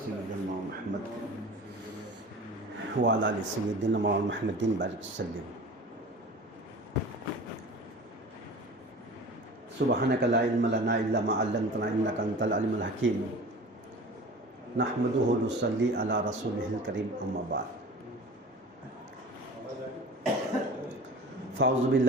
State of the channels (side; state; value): both; normal; correlation 0.38